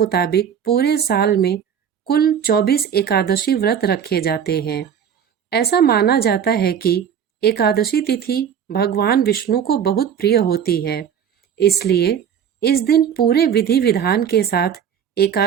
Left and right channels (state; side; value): quieter; left; 8.3 dB